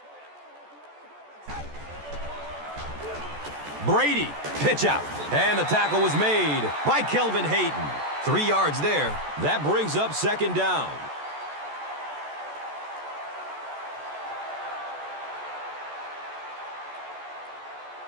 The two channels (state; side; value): late; left; 14 ms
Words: Brady, pitch out. And the tackle was made by Kelvin Hayden. 3 yards there. That brings up second down.